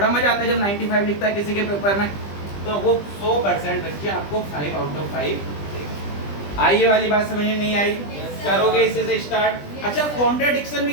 मजा आता है जब 95 लिखता है किसी के पेपर में, तो वो 100% बच्चे आपको 5 आउट ऑफ 5 देगा। आई ये वाली बात समझ में नहीं आई? करोगे इसी से स्टार्ट। अच्छा, कॉन्ट्राडिक्शन भी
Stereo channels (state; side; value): late; right; 20 ms